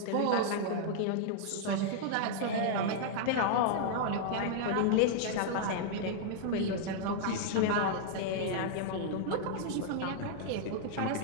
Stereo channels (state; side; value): different; both; correlation -0.01